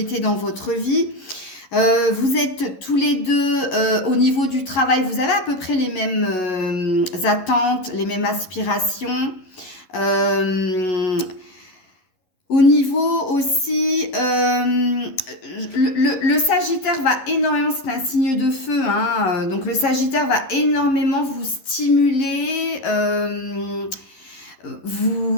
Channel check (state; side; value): late; right; 11 ms